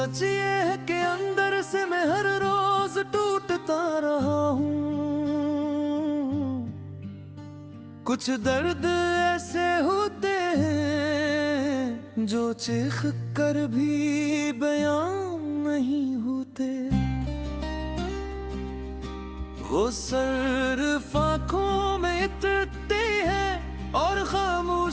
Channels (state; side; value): identical; both; correlation 1.00